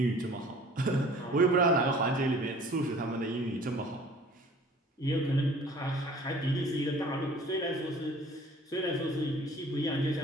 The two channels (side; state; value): both; normal; correlation 0.50